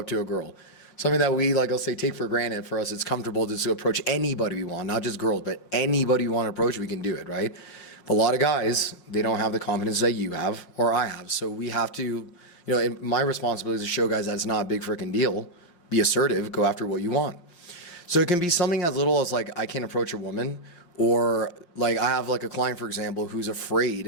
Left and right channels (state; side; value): late; right; 5.6 ms